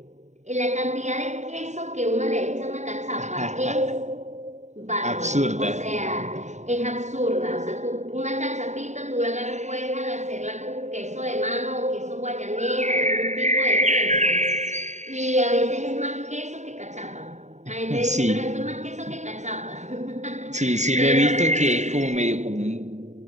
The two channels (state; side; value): late; left; 0.34 ms